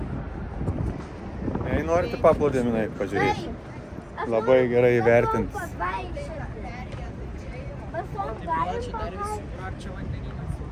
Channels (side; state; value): both; identical; correlation 1.00